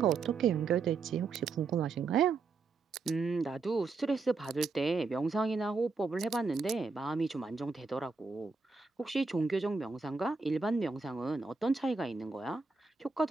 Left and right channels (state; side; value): quieter; left; 4.3 dB